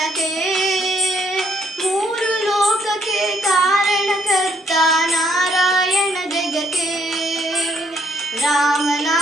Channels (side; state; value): both; normal; correlation 0.69